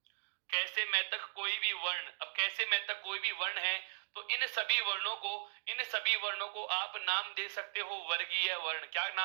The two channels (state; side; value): silent; left; digital silence